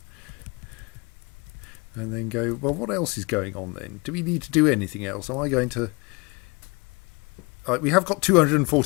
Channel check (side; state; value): right; quieter; 28.1 dB